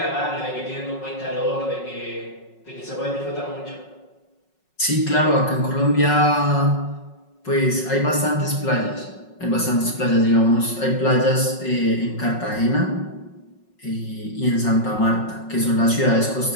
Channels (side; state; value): right; late; 5.4 ms